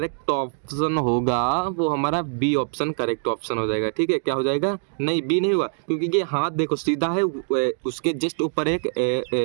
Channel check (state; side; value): silent; left; 63 dB below the other